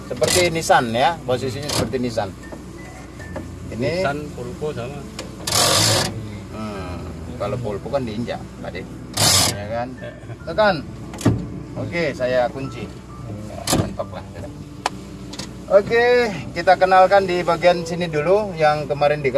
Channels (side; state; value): both; identical; correlation 1.00